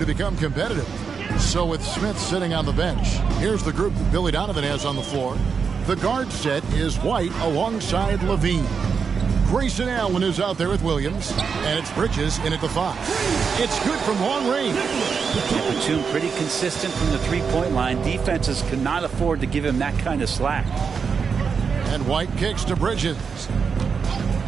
become competitive. So with Smith sitting on the bench, here's the group that Billy Donovan has on the floor. The guard set is White alongside Levine. Grayson Allen is out there with Williams, and it's Bridges in at the 5. It's good from long range. Batum pretty consistent from the three-point line. Defenses cannot afford to give him that kind of slack. And White kicks to Bridges.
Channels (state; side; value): quieter; left; 5.9 dB